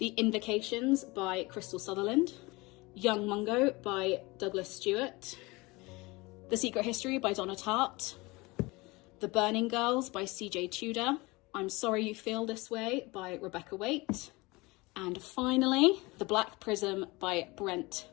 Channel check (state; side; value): quieter; right; 23.7 dB